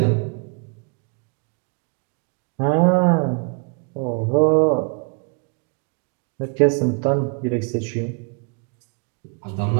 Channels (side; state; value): left; quieter; 37.4 dB